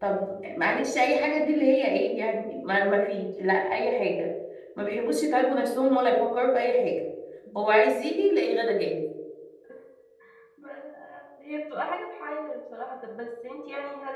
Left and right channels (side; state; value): both; identical; correlation 1.00